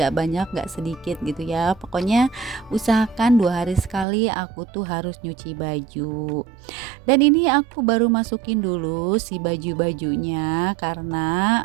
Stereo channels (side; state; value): left; drops out; at 4.0 s